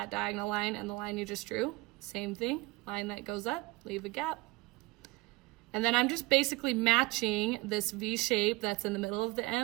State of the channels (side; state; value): left; quieter; 22.0 dB